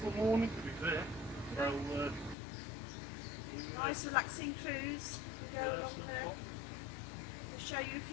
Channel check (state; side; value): drops out; right; at 2.4 s